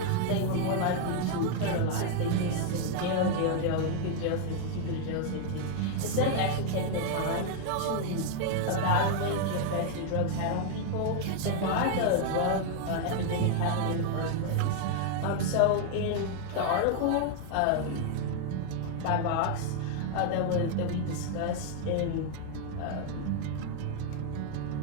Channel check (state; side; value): different; both; correlation 0.00